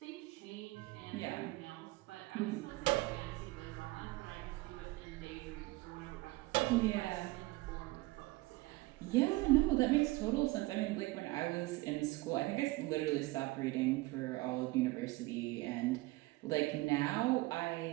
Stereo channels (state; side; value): quieter; left; 21.2 dB